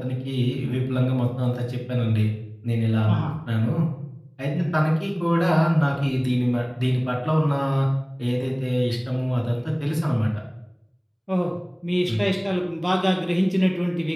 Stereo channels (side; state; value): both; identical; correlation 1.00